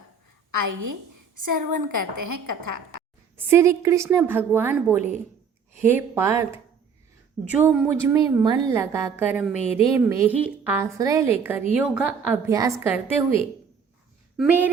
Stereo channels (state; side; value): quieter; left; 6.3 dB